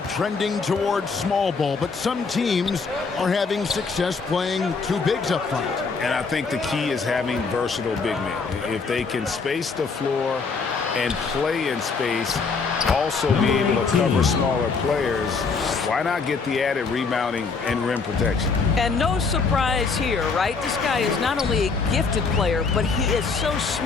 trending towards small ball, but some teams are having success playing 2 bigs up front. And I think the key is having versatile big men. If they can space the floor and play in space, also be able to cover smaller players, why not get the added rebounding and rim protection? And no surprise here, right? This guy is not only a gifted player, but he is so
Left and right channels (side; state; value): right; quieter; 4.8 dB